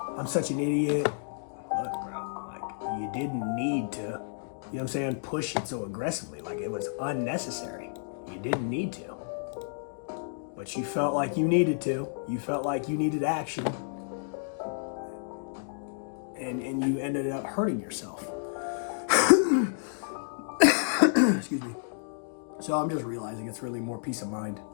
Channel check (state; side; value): silent; right; digital silence